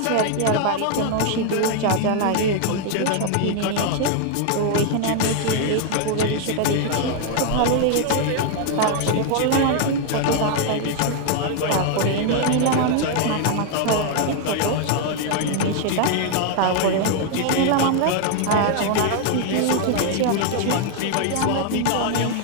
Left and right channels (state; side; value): different; both; correlation 0.00